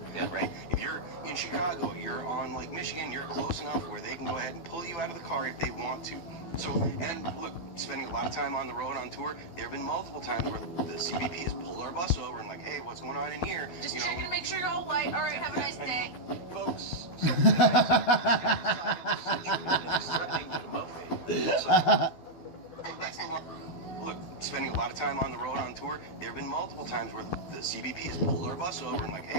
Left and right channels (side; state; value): right; late; 12 ms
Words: right? If you're in Chicago, you're on Lake Michigan, you're close enough where they can go ahead and pull you out of the car if they want to. So, and look, spending a lot of time on the road on tour, there have been multiple times where the CBP has pulled our bus over and like, hey, what's going on in here? Just checking to make sure you're all white. All right, have a nice day. Folks, look, spending a lot of time on the road on tour, there have been multiple times where the CBP has pulled our bus over and like,